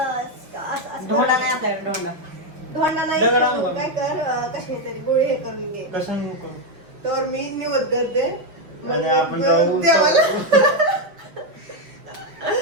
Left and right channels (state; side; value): late; left; 5.6 ms